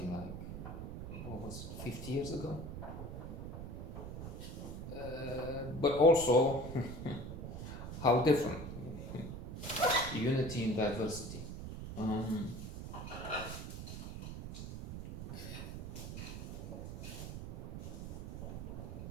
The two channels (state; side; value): noise; right; rumble, 7 dB below the sound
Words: like, what was it, 50 years ago? But also, how different. Unity in diversity.